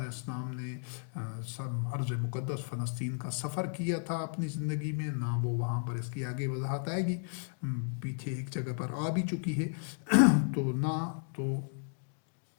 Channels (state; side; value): silent; right; 55 dB below the other